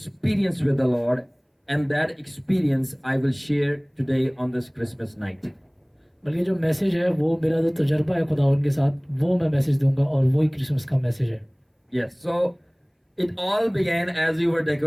with the Lord, and that experience I will share today on this Christmas night. बल्कि जो मैसेज है वो मेरा जो तजर्बा है खुदावन के साथ, वो मैं मैसेज दूंगा और वही क्रिसमस का मैसेज है। Yes, so it all began as we were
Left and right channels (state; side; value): identical; both; correlation 1.00